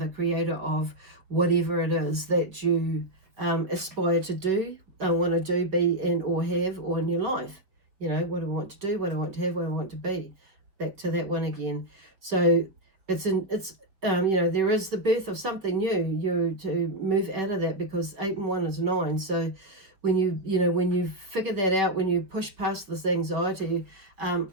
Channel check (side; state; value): left; late; 5.0 ms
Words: creator of whatever it is that you aspire to do, want to do, be, and or have, or in your life. What do I want to do, what do I want to have, what do I want to be? Back to that one again. So there is the birth of something new. You to move out of that, because 8 and 1 is 9. So when you figure that out, when you push past this anxiety,